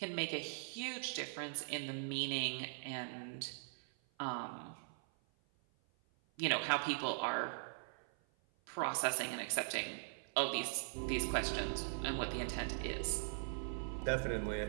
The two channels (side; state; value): left; silent; 50 dB below the other